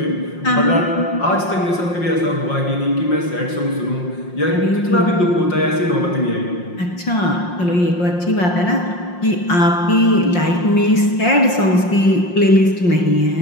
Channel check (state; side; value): late; right; 5.6 ms